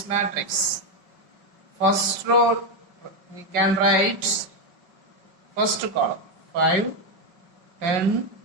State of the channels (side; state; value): left; late; 5.3 ms